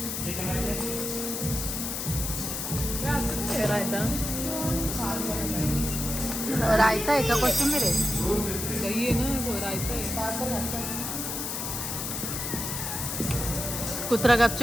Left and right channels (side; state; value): left; noise; hiss, 3 dB below the sound